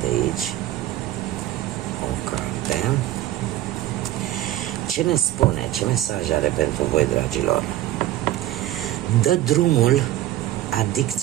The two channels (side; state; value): left; quieter; 13.9 dB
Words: aici o carte. Ce ne spune, ce mesaj are pentru voi, dragilor? Dă drumul